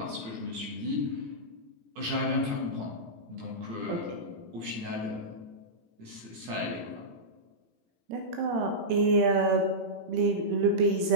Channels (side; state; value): left; late; 18 ms